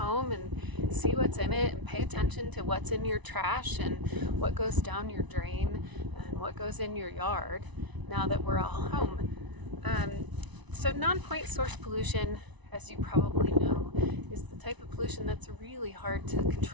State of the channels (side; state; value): left; late; 1.0 ms